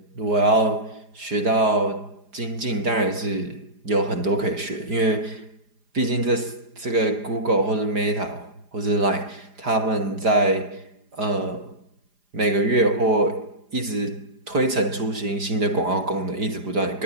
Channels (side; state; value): left; late; 4.9 ms